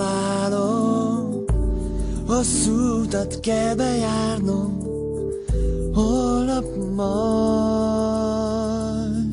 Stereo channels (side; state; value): both; identical; correlation 1.00